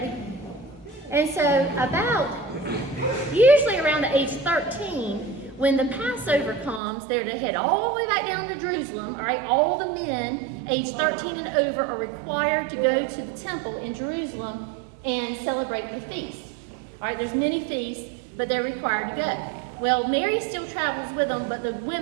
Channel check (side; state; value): left; drops out; at 6.8 s